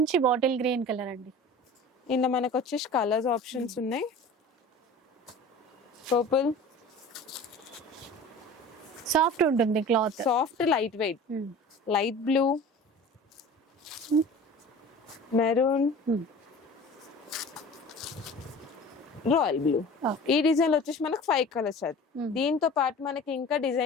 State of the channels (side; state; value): both; normal; correlation 0.40